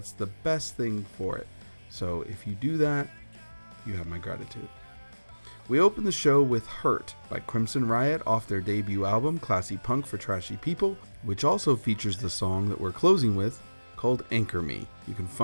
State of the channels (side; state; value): both; inverted; correlation -1.00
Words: the best thing for it. So if you do that, you have my gratitude. We open the show with Hurt by Crimson Riot off their debut album, Classy Punk for Trashy People, which also features the song that we're closing with, called Anchor Me. You can